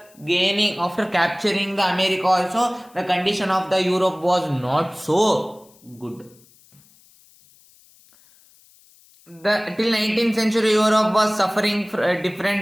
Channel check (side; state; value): left; noise; hiss, 29 dB below the sound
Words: capturing the America also. The condition of the Europe was not so good. Till 19th century, Europe was suffering